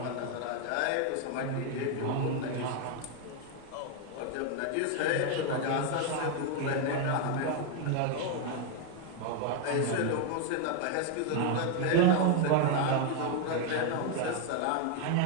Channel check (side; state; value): both; different; correlation 0.01